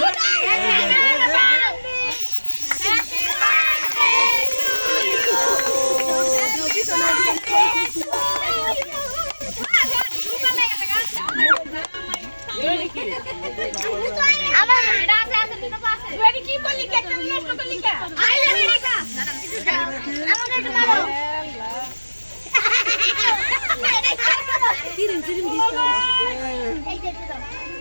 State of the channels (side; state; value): both; inverted; correlation -1.00